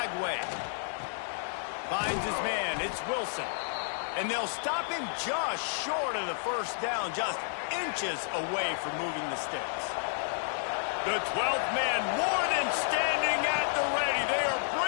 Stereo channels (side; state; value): right; silent; digital silence